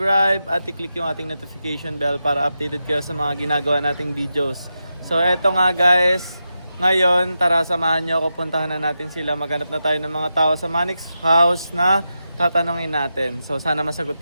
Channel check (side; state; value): both; inverted; correlation -0.89